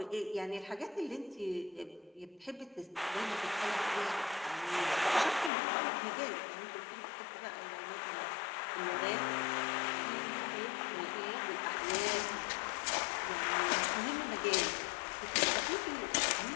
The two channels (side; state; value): right; drops out; at 5.5 s